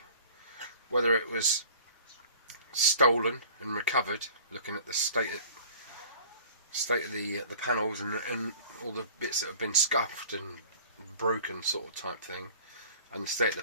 whether it was stolen and recovered, looking at the state of the panels and all the bits that have been scuffed and broken, sort of type thing, and the state of the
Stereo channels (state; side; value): inverted; both; correlation -0.48